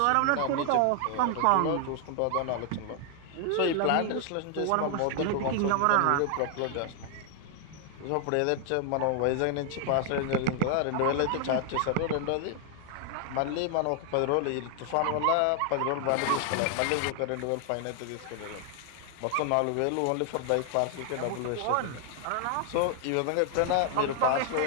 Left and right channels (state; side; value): different; both; correlation 0.00